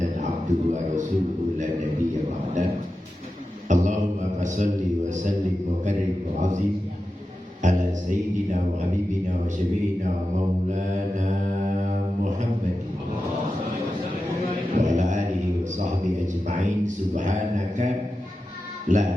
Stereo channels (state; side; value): normal; both; correlation 0.91